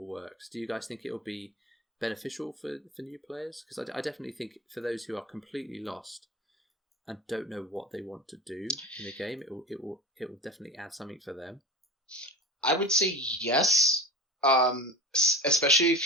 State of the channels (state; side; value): normal; both; correlation 0.31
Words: works. Do you guys think it will be beneficial for new players? Because I definitely think for those who are completely lost and don't know what they want to do in the game, it will definitely add something for them. I would say yes. Especially